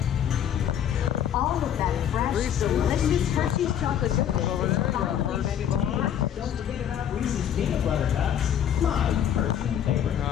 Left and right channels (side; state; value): right; quieter; 9.6 dB